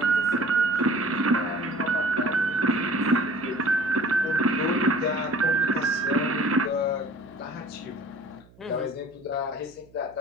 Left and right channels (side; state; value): right; noise; hum, 27 dB below the sound